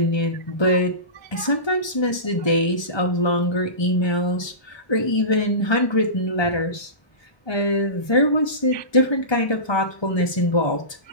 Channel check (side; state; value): right; late; 1.2 ms